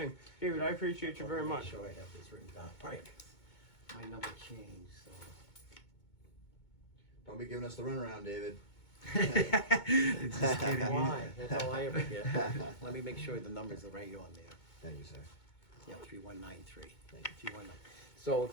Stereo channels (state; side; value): late; right; 2.2 ms